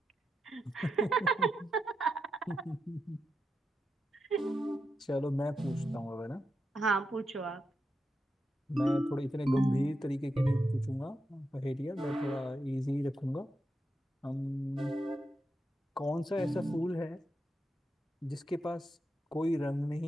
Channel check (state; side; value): normal; both; correlation 0.86